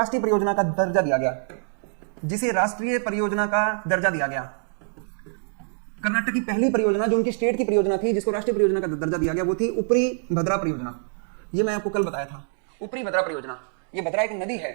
परियोजना का दर्जा दिया गया, जिसे राष्ट्रीय परियोजना का दर्जा दिया गया, कर्नाटक की पहली परियोजना जो उनकी स्टेट की परियोजना थी जिसको राष्ट्रीय परियोजना का दर्जा दिया गया, वो थी ऊपरी भद्रा परियोजना। ये मैं आपको कल बताया था, ऊपरी भद्रा परियोजना। ये भद्रा एक नदी है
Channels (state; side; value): silent; left; digital silence